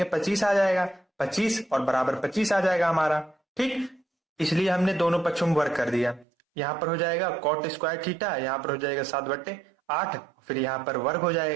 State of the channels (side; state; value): left; drops out; at 6.2 s